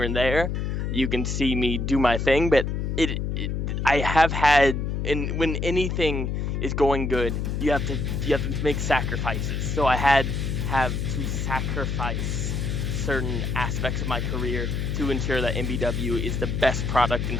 and there. You can see me do my thing, but I have had, and when anything is going good, you have to make sacrifices. So I have to sacrifice certain aspects of my career to ensure that MBW is the best product and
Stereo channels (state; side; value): noise; left; hum, 1 dB below the sound